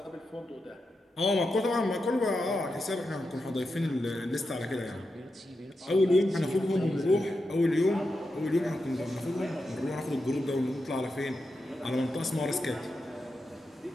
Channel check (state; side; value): normal; both; correlation 0.88